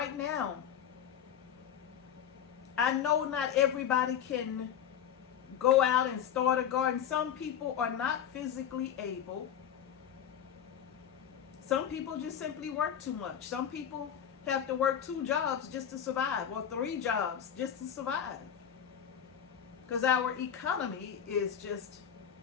now, I know not everybody can go out and start a garden. Some people are not physically able. Some people just simply work too much. Some people have to work 2 jobs just to survive, or 3 jobs just to survive. Because our economy is just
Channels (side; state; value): right; quieter; 9.1 dB